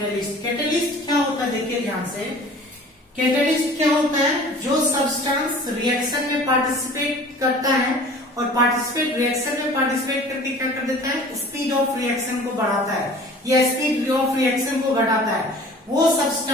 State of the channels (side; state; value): both; normal; correlation 0.46